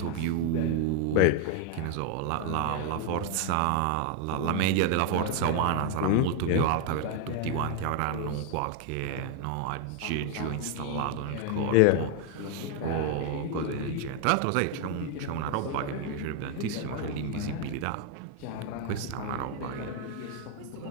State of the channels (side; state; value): both; different; correlation 0.01